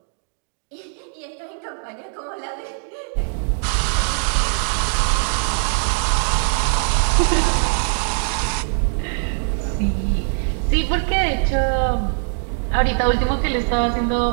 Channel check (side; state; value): left; silent; digital silence